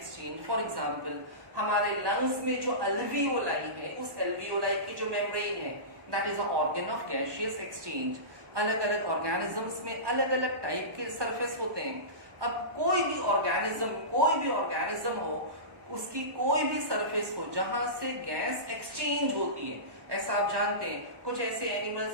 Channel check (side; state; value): left; late; 1.1 ms